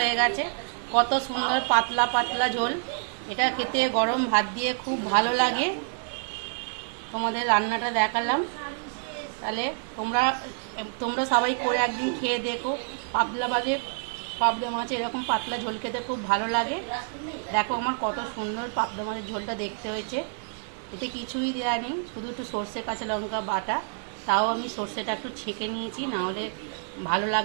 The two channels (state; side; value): silent; left; 60 dB below the other